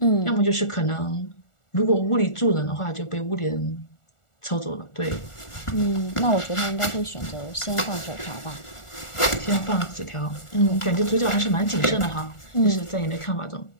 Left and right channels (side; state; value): right; late; 1.4 ms